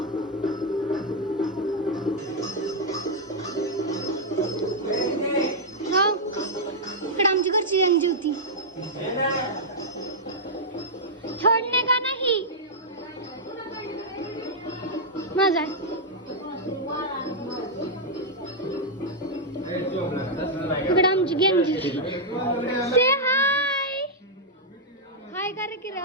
इकडे आमची घरची अंजी होती छोडणे का नाही माझा इकडे आमची गंजी से हाय हाय करे की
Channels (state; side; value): normal; both; correlation -0.06